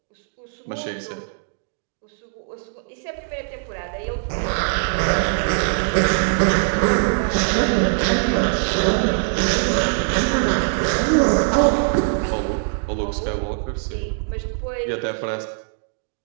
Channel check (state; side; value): silent; left; digital silence